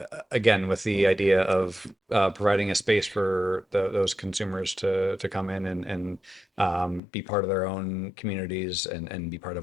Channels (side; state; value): right; drops out; at 7.0 s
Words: again with the idea of providing a space for those consumers to come in and be part of their own communities and be part